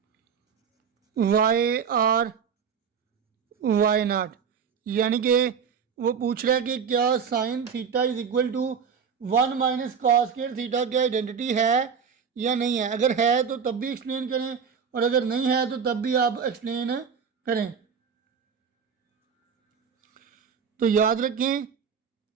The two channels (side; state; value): left; quieter; 6.7 dB